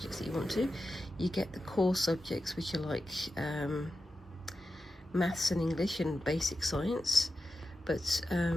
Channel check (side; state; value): both; normal; correlation 0.91